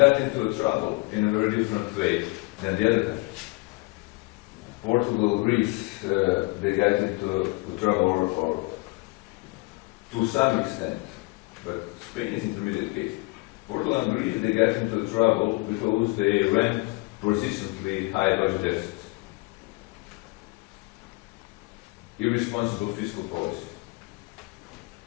into trouble in a very different way than the other countries. Portugal, Greece, they got into trouble, or to some extent, but Spain is intermediate case. Portugal and Greece, they got into trouble because they ran persistently high budget deficits, irresponsible fiscal policy,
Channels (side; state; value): right; quieter; 25.3 dB